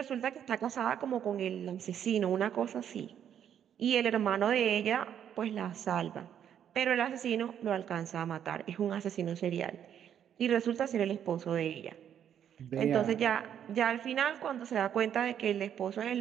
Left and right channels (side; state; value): left; quieter; 9.3 dB